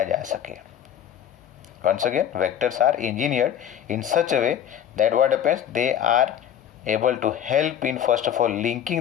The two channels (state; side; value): quieter; right; 9.6 dB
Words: जा सके. Once again, vectors are engineered in such a way that what happens, they are able to help in first of all